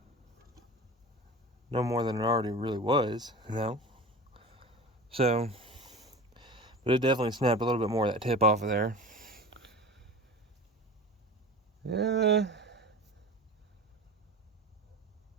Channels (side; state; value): both; normal; correlation 0.34